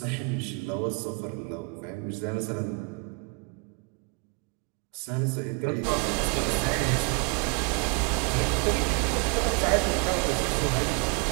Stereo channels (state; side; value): quieter; left; 28.9 dB